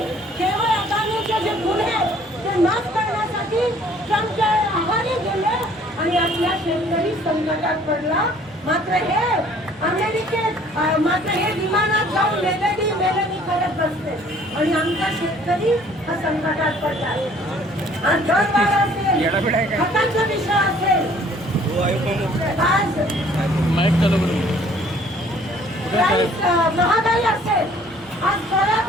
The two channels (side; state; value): both; normal; correlation 0.57